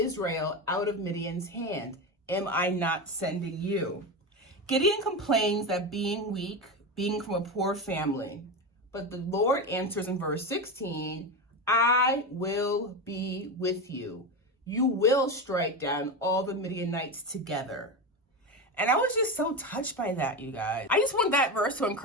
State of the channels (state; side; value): normal; both; correlation 0.19